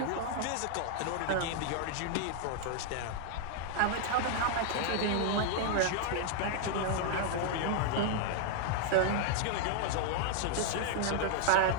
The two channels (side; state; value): both; different; correlation -0.01